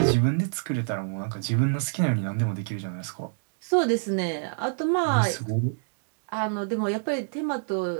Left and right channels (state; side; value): silent; left; digital silence